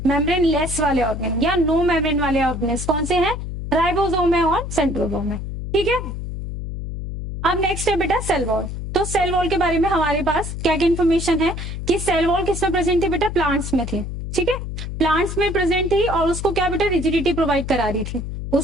मेम्ब्रेन लेस वाले ऑर्गेन या नो मेम्ब्रेन वाले ऑर्गेन्स कौन से हैं, राइबोसोम है और सेंट्रोसोम है, ठीक है। अब नेक्स्ट है बेटा सेल वॉल। तो सेल वॉल के बारे में हमारे पास क्या क्या इन्फॉर्मेशन है कि सेल वॉल किसमें प्रेजेंट थी बेटा, प्लांट्स में थी, ठीक है, प्लांट्स में प्रेजेंट थी, और उसको क्या बेटा रिजिडिटी प्रोवाइड करा रही थी,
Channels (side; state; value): left; noise; hum, 6 dB below the sound